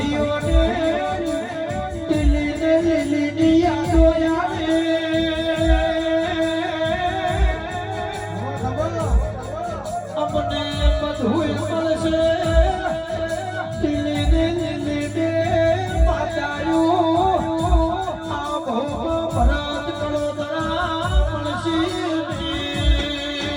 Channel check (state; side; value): identical; both; correlation 1.00